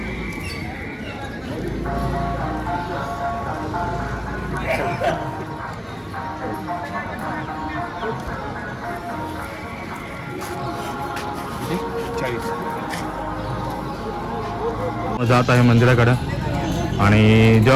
जात आहे मंदिराकडं. आणि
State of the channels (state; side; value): identical; both; correlation 1.00